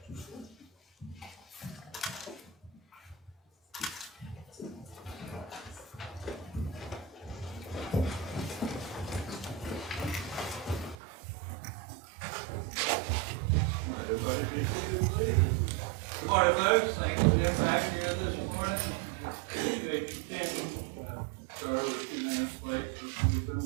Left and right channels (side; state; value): left; drops out; at 11.0 s